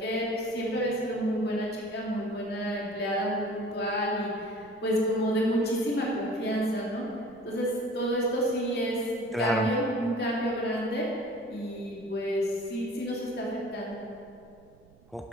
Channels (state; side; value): noise; right; rumble, 27 dB below the sound